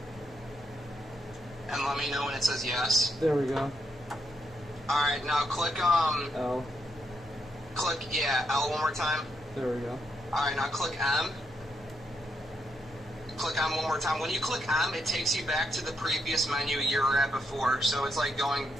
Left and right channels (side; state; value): both; normal; correlation 0.80